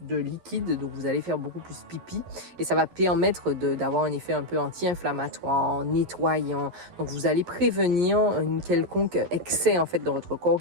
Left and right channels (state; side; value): late; left; 11 ms